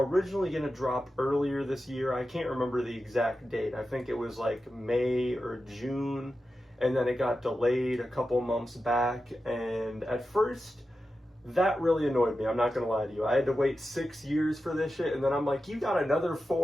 going to drop earlier this year. I can't remember the exact date. I think it was like May or June, and then it got delayed a couple months back. And at first, that really annoyed me. I'm not going to lie to you. I had to wait 6 years for this shit, and then I'm like, you got another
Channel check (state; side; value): normal; both; correlation 0.91